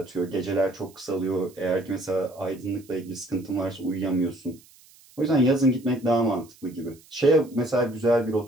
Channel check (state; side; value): noise; right; hiss, 26 dB below the sound